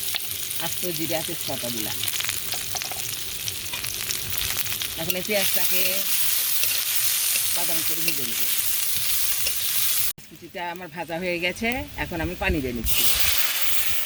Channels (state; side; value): identical; both; correlation 1.00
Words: আস্ত জিরা তেজপাতা দিলাম। এখন এই পেঁয়াজটাকে বাদামি করে ভেজে নেব। কুচিটা আমার ভাজা হয়ে গেছে, এখন আমি পানি দিয়ে নিচ্ছি।